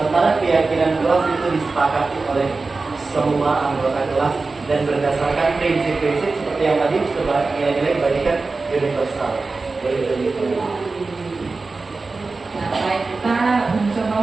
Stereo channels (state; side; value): quieter; left; 3.8 dB